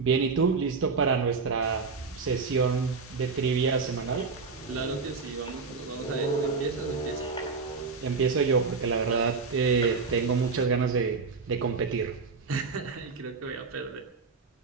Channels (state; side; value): quieter; left; 4.7 dB